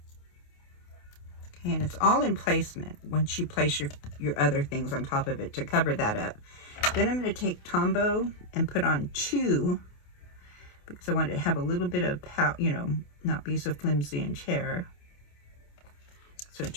Okay, and it's all in placement once you place your other things on top of it to cover that up. Then I'm going to take Tombow and put on 2, because I want it to have a little bit of power, you know, not be so flimsy and tear. So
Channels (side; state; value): right; late; 28 ms